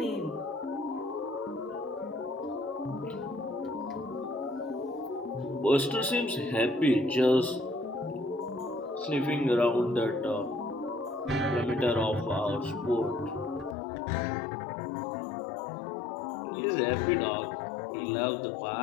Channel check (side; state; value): right; drops out; at 13.8 s